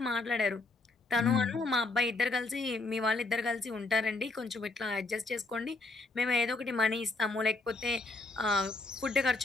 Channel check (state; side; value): quieter; right; 3.5 dB